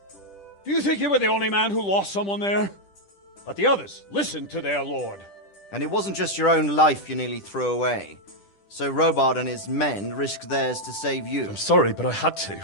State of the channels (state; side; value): late; right; 10 ms